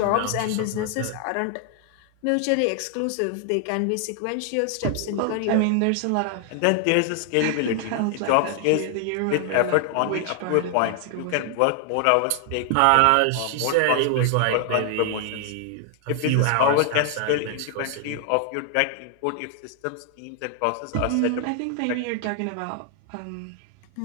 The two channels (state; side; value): different; both; correlation 0.00